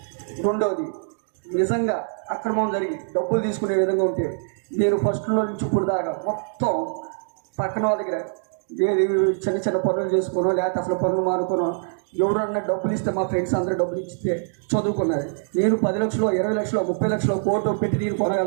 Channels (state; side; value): silent; left; digital silence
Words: రెండవది, నిజంగా అక్రమం జరిగి డబ్బులు తీసుకునే విధంగా ఉంటే నేను ఫస్ట్లో నుంచి ఇప్పుడు దాకా మొత్తం పక్కన వాళ్ళ దగ్గర ఏది చిన్న పనులు చేసుకోనో లేకపోతే అసలు పనులు మానుకోనో ఎవరన్నా డబ్బులు ఇస్తే మా ఫ్రెండ్స్ అందరూ డబ్బులు ఇస్తే చదువుకున్నారు. నేను 10 లక్షలు, 20 లక్షలు, 30 లక్షలు కోట్లు పెట్టి నేను